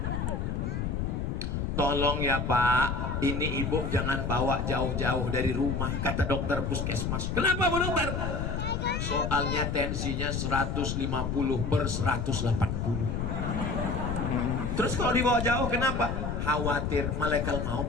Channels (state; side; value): noise; left; rumble, 1 dB below the sound